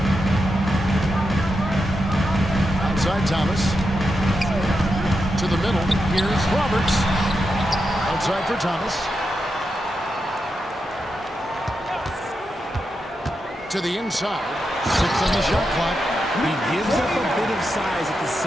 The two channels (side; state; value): both; normal; correlation 0.87